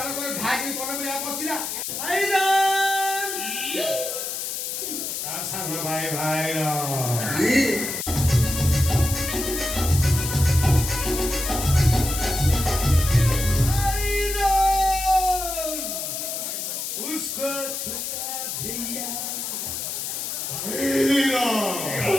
ନ କରି ଢାକି ପରେ ବି ବସିଲା। ତା ସାନ ଭାଇ ଭାଇର उसको छोटा भैया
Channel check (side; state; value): left; noise; hiss, 4 dB below the sound